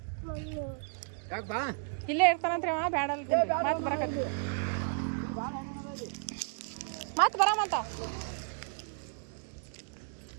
ಇಲ್ಲೇ ಇರ್ತಾನಂತ್ರಿ ಅವ. ಬೇಡ ಮತ್ತೆ ಬರಕತ್ತಿ ಮತ್ತೆ ಬರಾಮಂತ.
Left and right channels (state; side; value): silent; left; 56 dB below the other